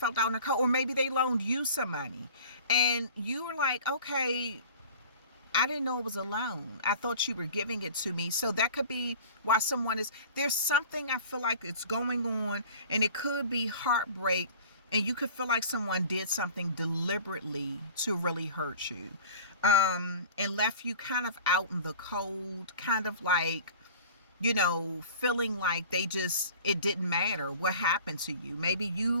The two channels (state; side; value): inverted; both; correlation -0.42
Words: out in the cold. Or maybe they loaned you some money and you were like, okay, I didn't know it was a loan. I thought you were giving it to me. So that could be why there's something I feel like it's going on, and it could be heartbreak, and you could feel like someone did something deliberately to really hurt you, and left you kind of out in the cold, kind of like, you know, feeling like it didn't matter what happened to you. Maybe